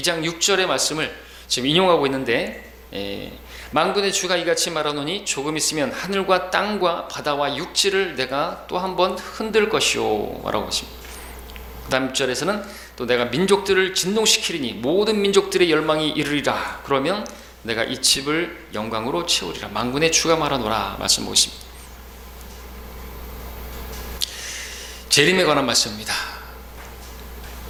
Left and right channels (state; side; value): identical; both; correlation 1.00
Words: 6절의 말씀을 지금 인용하고 있는데 만군의 주가 이같이 말하노니 조금 있으면 하늘과 땅과 바다와 육지를 내가 또 한 번 흔들 것이요 라고 했습니다. 다음 절에서는 또 내가 민족들을 진동시키리니 모든 민족들의 열망이 이르리라. 그러면 내가 이 집을 영광으로 채우리라. 만군의 주가 말하노라 말씀하고 있습니다. 재림에 관한 말씀입니다.